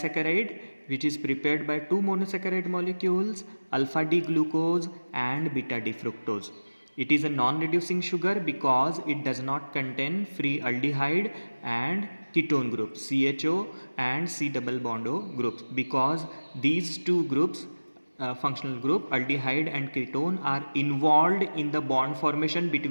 which is prepared by two monosaccharide molecules, alpha D glucose and beta D fructose. It is a non-reducing sugar because it does not contain free aldehyde and ketone groups CHO and C double bond O groups, because these two groups functional group aldehyde and ketone are involved in the bond formation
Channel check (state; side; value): inverted; both; correlation -1.00